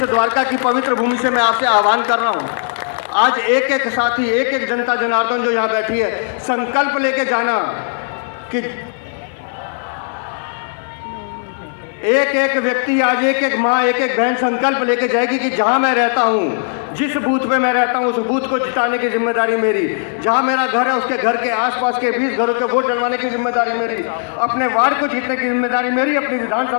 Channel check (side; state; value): right; silent; 57 dB below the other